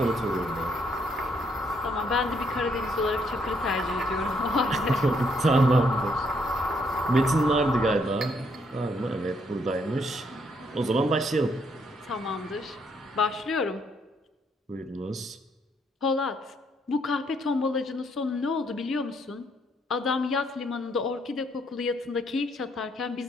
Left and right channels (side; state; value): both; normal; correlation 0.71